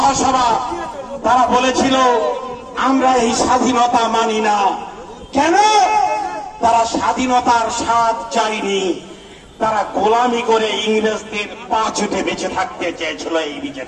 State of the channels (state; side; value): identical; both; correlation 1.00